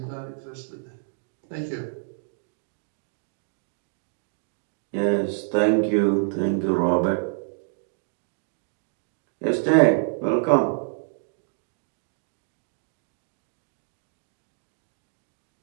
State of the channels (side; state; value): left; silent; digital silence